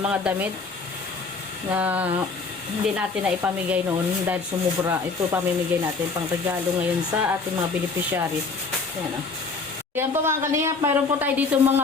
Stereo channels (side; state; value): right; quieter; 4.3 dB